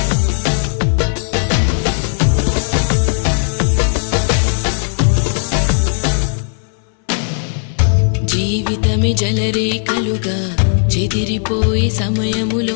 జీవితమే జలరేఖలుగా చెదిరిపోయే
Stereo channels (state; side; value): silent; right; 69 dB below the other